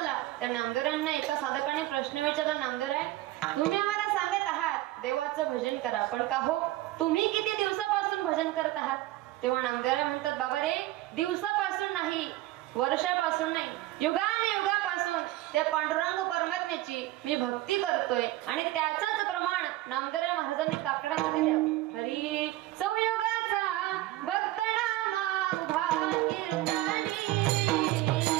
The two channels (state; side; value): quieter; left; 16.6 dB